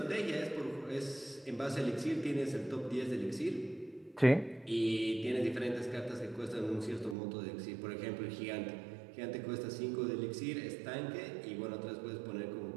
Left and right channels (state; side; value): drops out; left; at 7.2 s